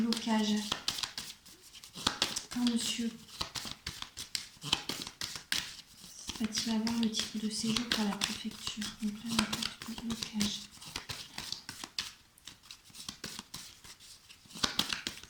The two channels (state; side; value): identical; both; correlation 1.00